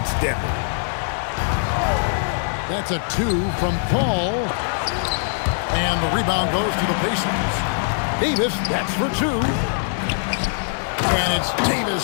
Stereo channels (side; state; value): right; silent; 64 dB below the other